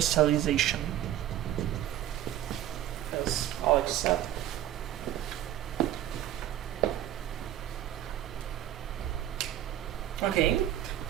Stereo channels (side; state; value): left; quieter; 12.4 dB